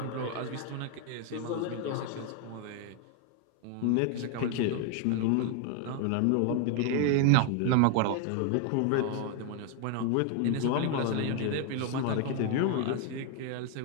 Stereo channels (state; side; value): different; both; correlation 0.00